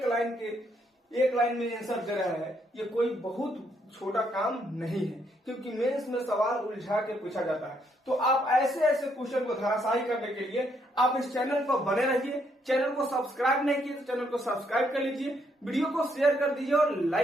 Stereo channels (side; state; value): both; normal; correlation 0.73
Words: लाइन में आंसर दे रहे हैं, ये कोई बहुत छोटा काम नहीं है, क्योंकि मेंस में सवाल उलझा के पूछा जाता है। तो आप ऐसे ऐसे क्वेश्चन को धराशायी करने के लिए आप इस चैनल पर बने रहिए। चैनल को सब्सक्राइब नहीं किए तो चैनल को सब्सक्राइब कर लीजिए, वीडियो को शेयर कर दीजिए और